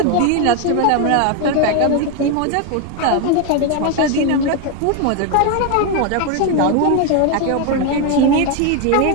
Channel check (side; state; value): both; different; correlation 0.01